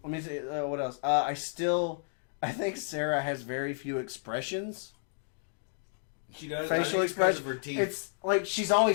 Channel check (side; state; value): right; silent; digital silence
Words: me see what else. I think Sarah has very few expressions. She does. Facial expression. Her teeth. It's like she's